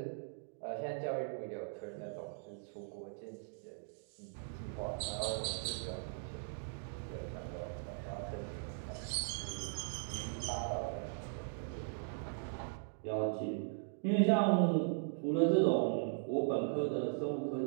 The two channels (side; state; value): left; silent; digital silence